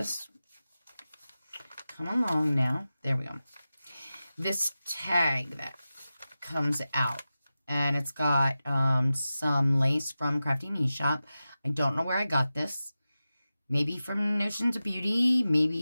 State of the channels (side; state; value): both; inverted; correlation -0.94